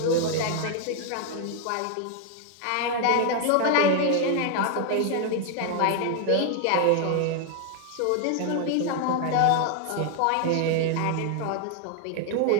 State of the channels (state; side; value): different; both; correlation 0.00